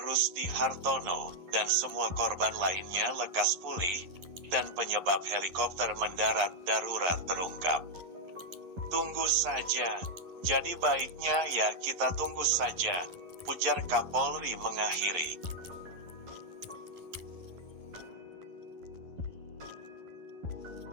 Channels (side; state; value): left; late; 11 ms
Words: Hartono dan semua korban lainnya lekas pulih, dan penyebab helikopter mendarat darurat terungkap. Tunggu saja, jadi baiknya ya kita tunggu saja, ujar Kapolri mengakhiri.